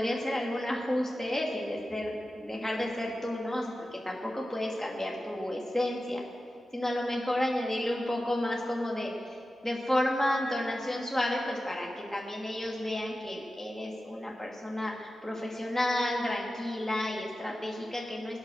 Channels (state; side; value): normal; both; correlation 0.93